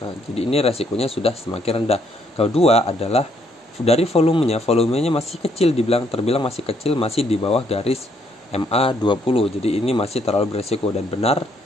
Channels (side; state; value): both; normal; correlation 0.70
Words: Nah, jadi ini resikonya sudah semakin rendah. Kedua adalah dari volumenya masih kecil, terbilang masih kecil, masih di bawah garis MA20. Jadi ini masih terlalu beresiko, dan benar